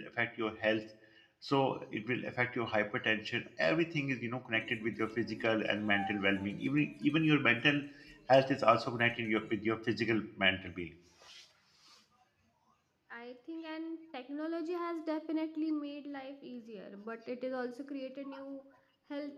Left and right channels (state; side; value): identical; both; correlation 1.00